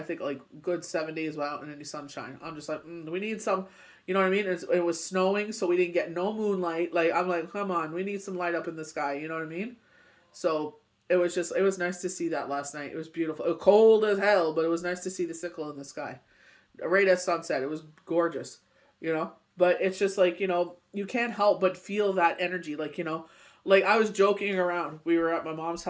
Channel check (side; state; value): both; identical; correlation 1.00